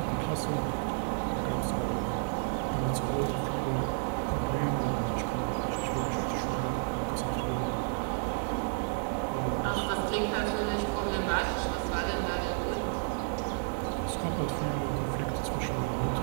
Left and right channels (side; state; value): left; silent; 57 dB below the other